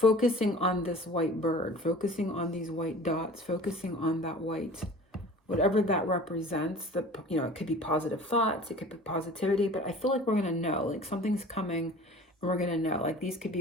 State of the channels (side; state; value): both; normal; correlation 0.43